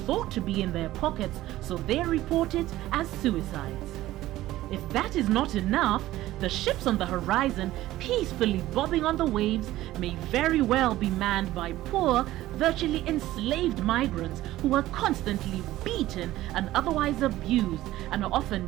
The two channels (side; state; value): left; quieter; 15.5 dB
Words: to be in their pockets, so they report it as suicides. If that is not enough, the ships on the horizon peacefully bobbing on the waves may very well be manned by poor, virtually enslaved migrants who are constantly beaten and otherwise abused and are often